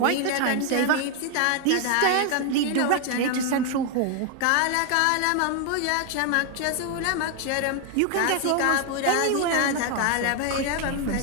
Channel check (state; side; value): different; both; correlation 0.01